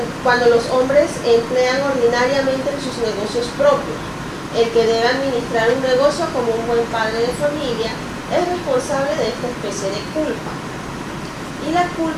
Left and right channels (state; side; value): identical; both; correlation 1.00